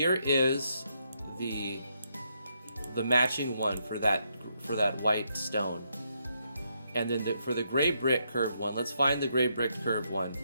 is the matching one for that white stone. And then for the gray brick curved one, let's find the gray brick curved one.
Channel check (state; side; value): inverted; both; correlation -0.78